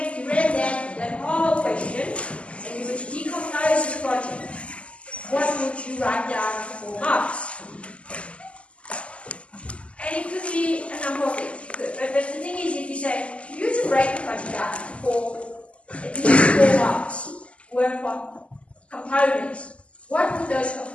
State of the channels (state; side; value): late; right; 0.058 ms